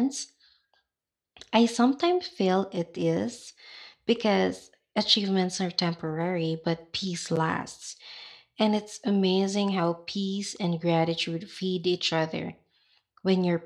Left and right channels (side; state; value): both; identical; correlation 1.00